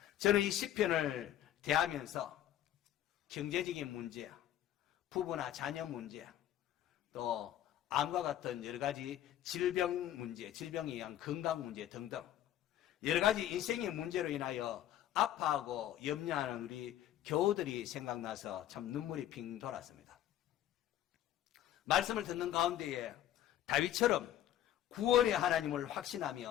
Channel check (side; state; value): right; quieter; 12.0 dB